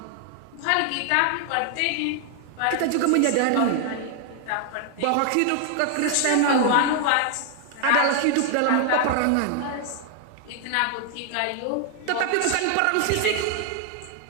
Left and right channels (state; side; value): different; both; correlation 0.00